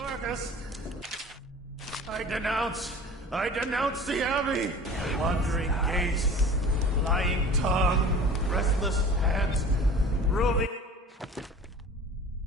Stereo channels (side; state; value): both; normal; correlation 0.41